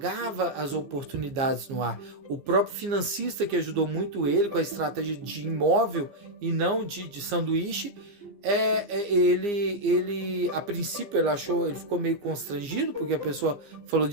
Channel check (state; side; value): late; left; 15 ms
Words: as oportunidades no ar. O próprio financista que ajudou muito ele com a estratégia de imóvel e não de sanduíche, ele a princípio ele ficou meio constrangido porque a pessoa falou